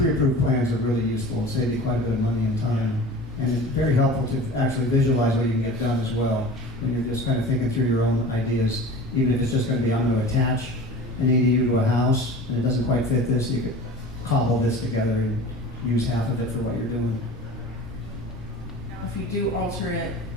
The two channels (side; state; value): both; normal; correlation 0.38